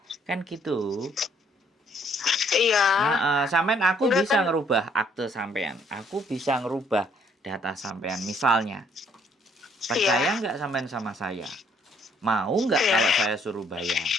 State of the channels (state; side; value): normal; both; correlation 0.66